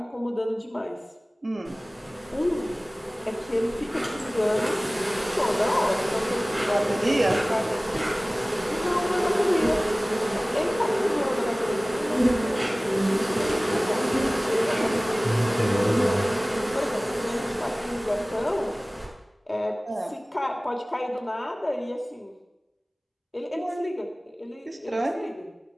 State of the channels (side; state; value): both; normal; correlation 0.98